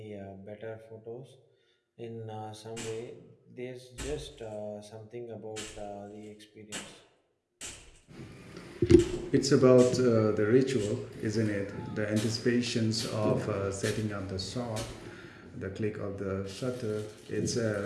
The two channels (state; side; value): identical; both; correlation 1.00